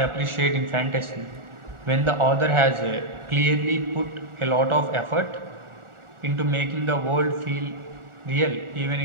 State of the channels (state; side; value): late; left; 1.4 ms